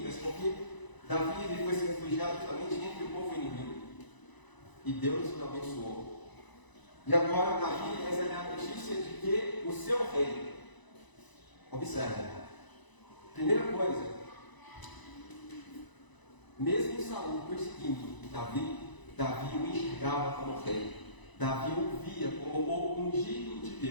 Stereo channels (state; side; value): late; right; 1.0 ms